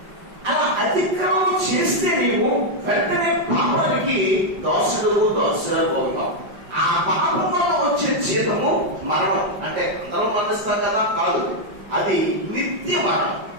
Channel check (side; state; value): left; late; 5.3 ms